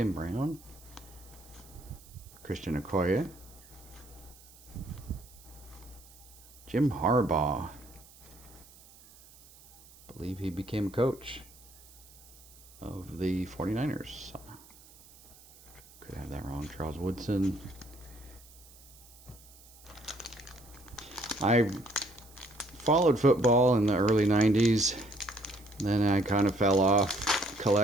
Brown. Christian Okoye. Jim Harbaugh. I believe he became a coach of the 49ers. Could have that wrong. Charles Woodson. I followed football in the early 90s. Then I kind of fell off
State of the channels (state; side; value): noise; right; hiss, 23 dB below the sound